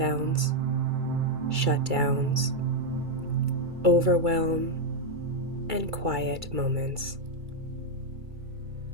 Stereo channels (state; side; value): late; left; 2.3 ms